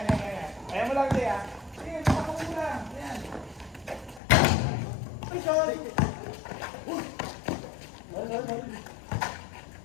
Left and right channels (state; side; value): drops out; right; at 4.2 s